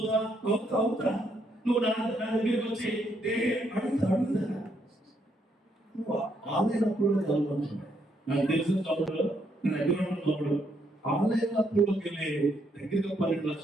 అవుతా. నువ్వు నా దగ్గరికి వచ్చి అడుగుతా. నువ్వు ఆన్లైన్ అప్పుడు చదువుకుంటున్నావు. నాకు తెలిసిన చదువులు నేను దగ్గర ఉన్నప్పుడు ఆన్లైన్ అప్పుడుకి వెళ్ళి దగ్గరగా 12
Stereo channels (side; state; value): both; normal; correlation 0.74